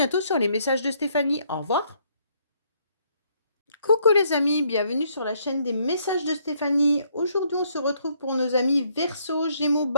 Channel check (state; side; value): inverted; both; correlation -0.69